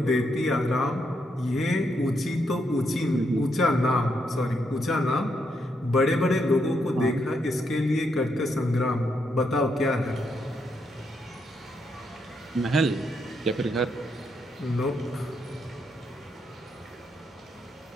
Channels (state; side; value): normal; both; correlation 0.78